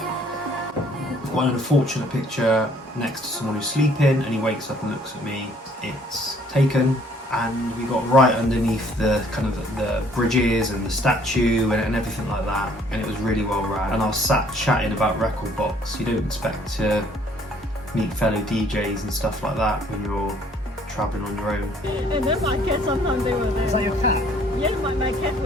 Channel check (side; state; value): both; normal; correlation 0.61